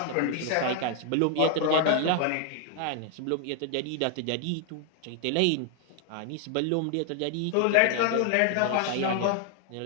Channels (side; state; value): both; different; correlation 0.00